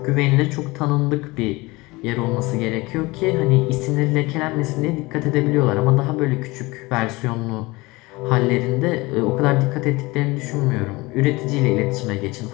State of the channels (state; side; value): quieter; right; 22.7 dB